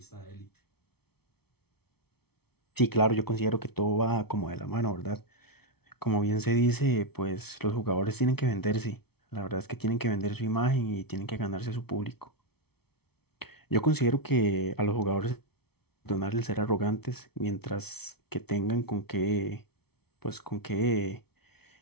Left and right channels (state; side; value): late; right; 0.96 ms